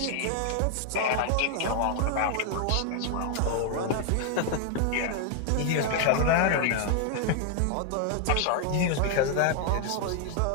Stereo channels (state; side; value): different; both; correlation 0.00